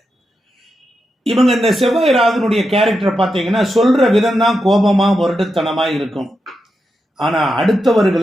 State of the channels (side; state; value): both; normal; correlation 0.87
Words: இவங்க இந்த செவ்வாய் ராகுனுடைய கேரக்டரை பார்த்தீங்கன்னா சொல்ற விதம் தான் கோபமா முரட்டுத்தனமா இருக்கும். ஆனா